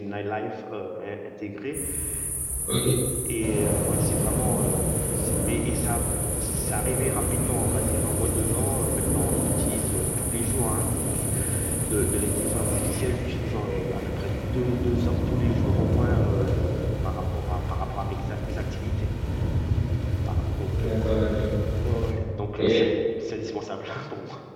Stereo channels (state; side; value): identical; both; correlation 1.00